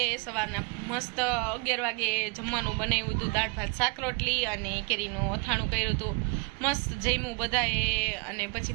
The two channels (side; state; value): left; quieter; 31.2 dB